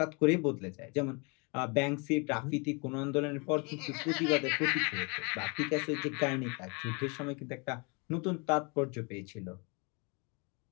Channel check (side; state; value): right; quieter; 31.5 dB